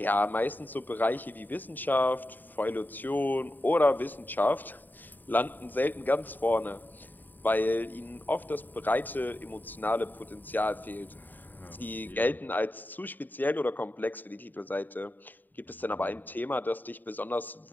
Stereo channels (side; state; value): right; late; 0.089 ms